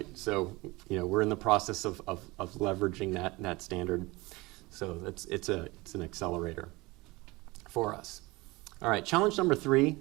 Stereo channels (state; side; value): quieter; left; 22.6 dB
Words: So we're in the process of leveraging that standard. So it's an accelerator for us. All right, challenge number 3,